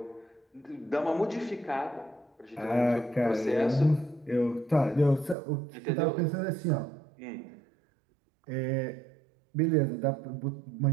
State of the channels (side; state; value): left; drops out; at 5.4 s